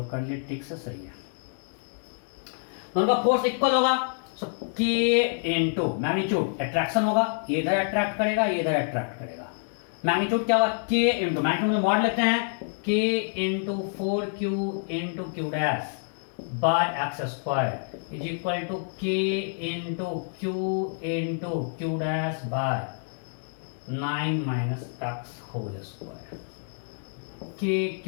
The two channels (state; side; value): silent; right; digital silence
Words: कर लिए ठीक से सही है। दोनों का फोर्स इक्वल होगा, सो k इंटू मैग्नीट्यूड, अट्रैक्शन होगा, ये इधर अट्रैक्ट करेगा, ये इधर अट्रैक्ट करेगा। मैग्नीट्यूड क्या होगा, k इंटू, मैग्नीट्यूड में मॉड लेते हैं, k into 4q into Q dash by x square is equal to k into q dash by 9 minus x whole square. k